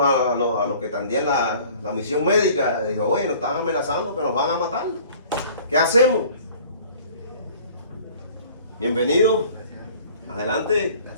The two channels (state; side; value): inverted; both; correlation -0.49